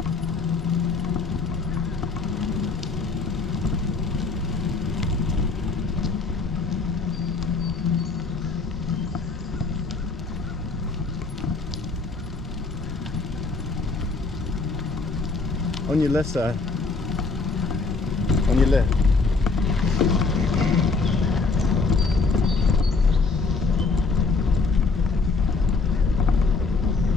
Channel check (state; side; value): quieter; right; 4.0 dB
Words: On your left side. On your left.